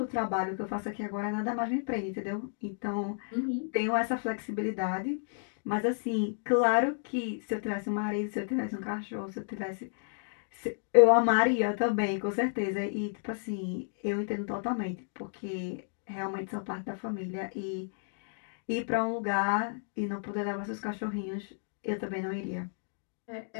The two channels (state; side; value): silent; right; digital silence